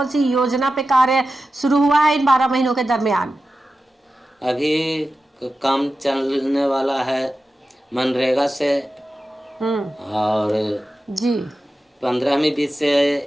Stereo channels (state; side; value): normal; both; correlation 0.93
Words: सी योजना पे कार्य शुरू हुआ है इन 12 महीनों के दरमियान? अभी काम चलने वाला है मनरेगा से और जी 15वीं बीत से